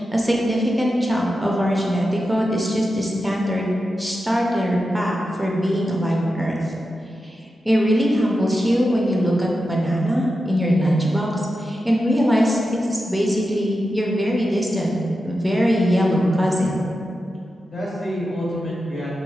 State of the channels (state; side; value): normal; both; correlation 0.90